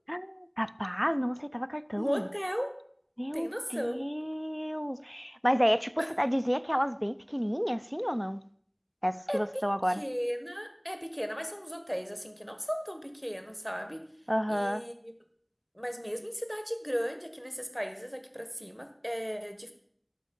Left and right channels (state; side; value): identical; both; correlation 1.00